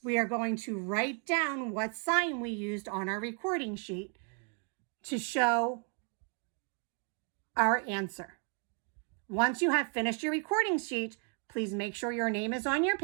we are going to write down what sign we used on our recording sheet to show our answer. Once you have finished your recording sheet, please make sure your name is on your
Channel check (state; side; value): quieter; left; 39.7 dB